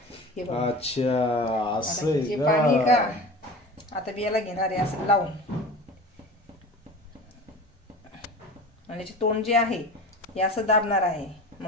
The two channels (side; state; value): both; normal; correlation 0.35